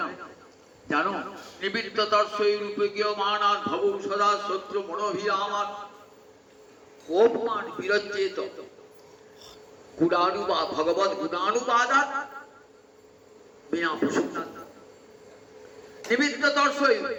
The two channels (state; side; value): identical; both; correlation 1.00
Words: জানো? নিবৃত্ত দর্শই রূপে গিয়ে মহারাজ ভব সদা শত্রু মনোভিরামান অপমান বিরচেত গুণানুবাদ ভগবত গুণানুবাদাত বিনা প্রসন্নাত। নিবৃত্ত দর্শই